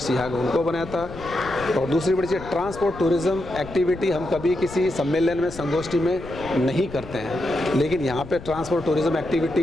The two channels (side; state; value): left; noise; rumble, 14 dB below the sound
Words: उनको बनाया था। और दूसरी बड़ी चीज़ ट्रांसपोर्ट टूरिज़्म एक्टिविटी हम कभी किसी सम्मेलन में संगोष्ठी में नहीं करते हैं, लेकिन यहाँ पे ट्रांसपोर्ट टूरिज़्म